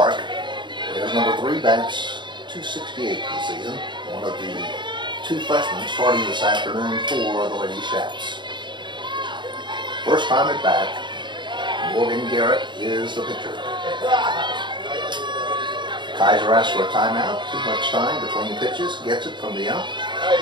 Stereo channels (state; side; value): late; left; 0.22 ms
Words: There's number 3, bats 268 this season. One of the 2 freshmen starting this afternoon for the Lady Shaps. First time at bat, Morgan Garrett is the pitcher. Kaiser asks for a timeout. Too much time between pitches. Gets it from the ump.